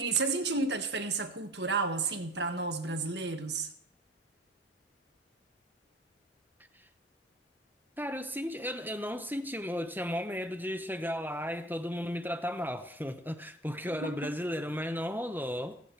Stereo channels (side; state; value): both; normal; correlation 0.43